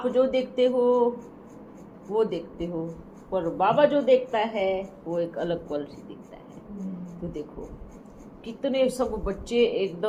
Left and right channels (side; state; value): both; identical; correlation 1.00